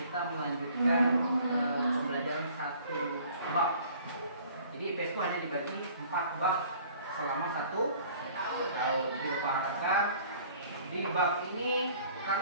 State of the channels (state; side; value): inverted; both; correlation -0.52